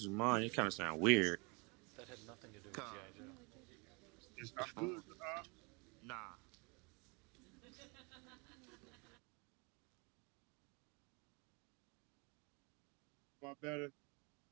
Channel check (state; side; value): quieter; left; 30.5 dB